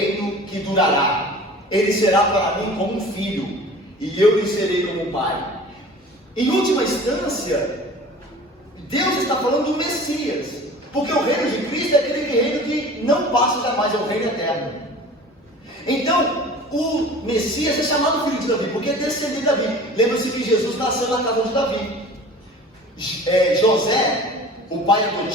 que durará. Ele será para mim como um filho, e eu lhe serei como um pai. Em última instância, Deus está falando do Messias, porque o reino de Cristo é aquele reino que não passa jamais, é o reino eterno. Então, o Messias é chamado filho de Davi, porque é descendente de Davi. Lembra-se que Jesus nasceu na casa de Davi. José, o pai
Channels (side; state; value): both; normal; correlation 0.42